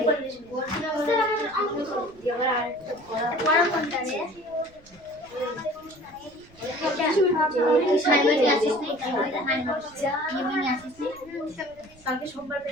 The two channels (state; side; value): noise; right; rumble, 26 dB below the sound